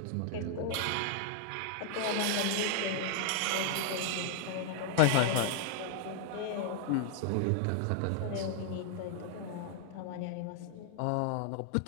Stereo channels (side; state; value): both; different; correlation 0.00